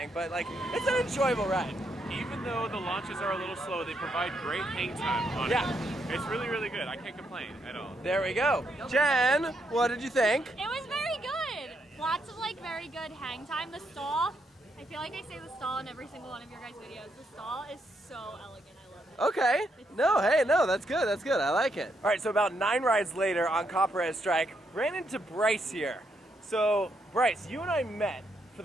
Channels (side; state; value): both; normal; correlation 0.78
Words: but like it's an enjoyable ride. Even though the launches are a little slow, they provide great hang time on it. It's really, really good. I can't complain at all. There we go. Jen, what did you think? It was very good. Lots of like very good hang time. The stall, I feel like I say the stall in every single one of your guys' videos. The stall is so elegant. I love it. Okay. No, that's good. That's good. I like it. All right, so about 9 rides later on Copperhead Strike, ran into Bryce here. So, Bryce, you and I met for